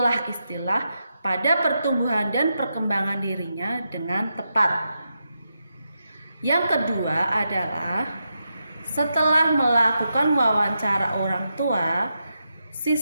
pada pertumbuhan dan perkembangan dirinya dengan tepat. Yang kedua adalah, setelah melakukan wawancara orang tua,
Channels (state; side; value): inverted; both; correlation -0.86